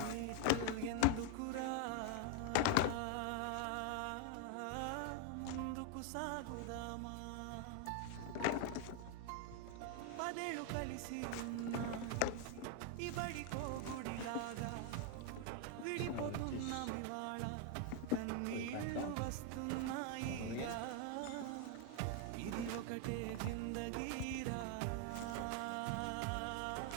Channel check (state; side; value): different; both; correlation 0.00